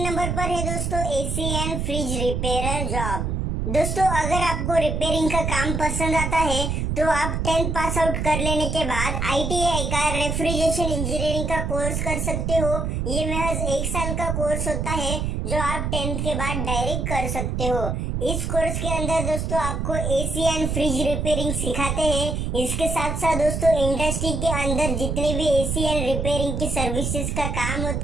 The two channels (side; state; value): right; noise; rumble, 1 dB below the sound